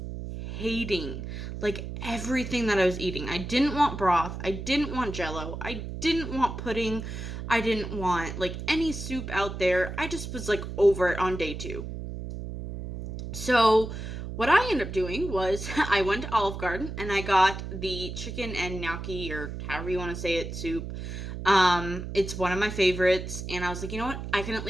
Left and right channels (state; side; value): noise; right; hum, 7 dB below the sound